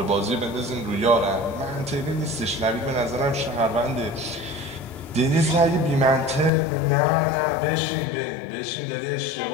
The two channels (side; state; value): right; drops out; at 6.5 s